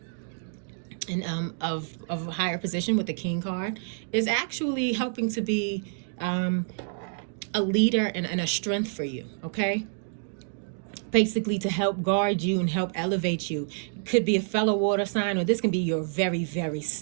and of a higher position with the King card is actually helping to be a leader and a strength for you, okay? Basically to help guard you and help elevate you. Could be a fellow water sign, or this can be your very, very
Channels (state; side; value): silent; left; digital silence